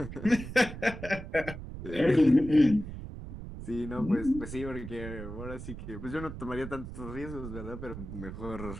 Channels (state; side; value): noise; right; rumble, 10 dB below the sound